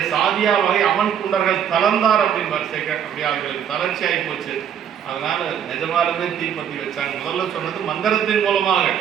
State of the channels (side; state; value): left; quieter; 8.8 dB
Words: சாதியா வகை அவன் குண்டர்கள் தளர்ந்தார் அப்படின்னு அப்படியே அவர்களுக்கு தளர்ச்சி ஆகி போச்சு. அதனால நிஜமாலுமே தீப்பத்தி வச்சாங்க. முதல்ல சொன்னது மந்திரத்தின் மூலமாக,